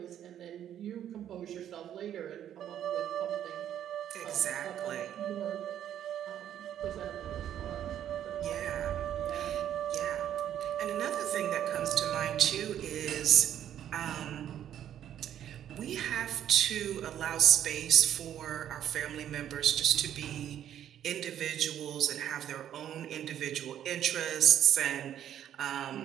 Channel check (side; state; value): left; quieter; 10.5 dB